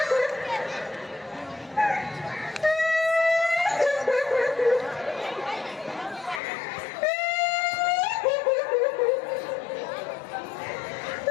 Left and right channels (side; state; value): right; drops out; at 6.4 s